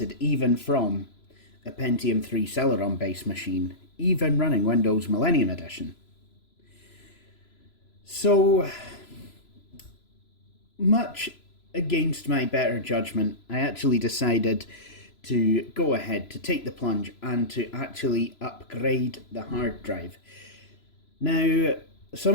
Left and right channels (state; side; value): late; right; 3.0 ms